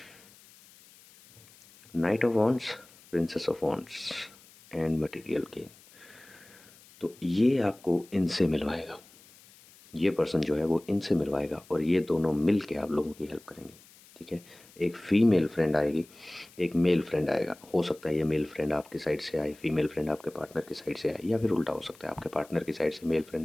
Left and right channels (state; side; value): noise; left; hiss, 25 dB below the sound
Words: Knight of wands, princess of wands and material gain. तो ये आपको इनसे मिलवाएगा, ये पर्सन जो है वो इनसे मिलवाएगा, और ये दोनों मिल के आप लोगों की हेल्प करेंगे, ठीक है। एक फीमेल फ्रेंड आएगी, एक मेल फ्रेंड आएगा। हो सकता है ये मेल फ्रेंड आपके साइड से आए, फीमेल फ्रेंड आपके पार्टनर की साइड से आए, या फिर उल्टा हो सकता है आपके पार्टनर की साइड से मेल